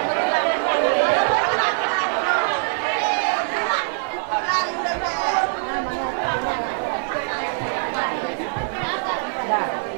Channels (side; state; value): left; silent; 64 dB below the other